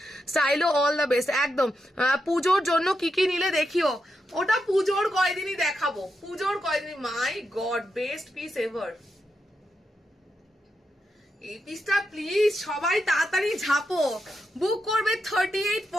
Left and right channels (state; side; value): normal; both; correlation 0.85